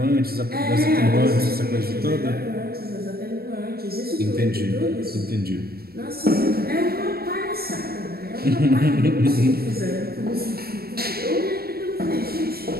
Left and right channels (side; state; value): left; late; 0.45 ms